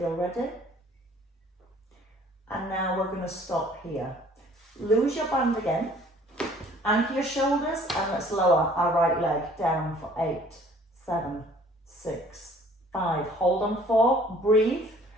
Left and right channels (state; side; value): normal; both; correlation 0.55